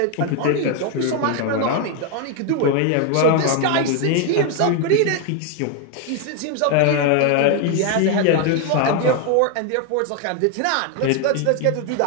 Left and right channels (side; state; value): both; different; correlation 0.01